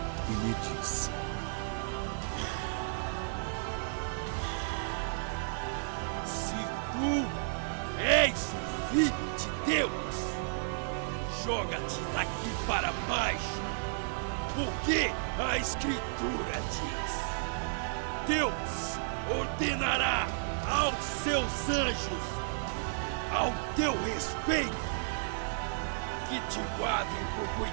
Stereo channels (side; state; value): left; silent; 56 dB below the other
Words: e lhe disse: Se tu és o Filho de Deus, joga-te daqui para baixo, porque a Escritura diz: Deus ordenará aos seus anjos ao teu respeito que te guardem com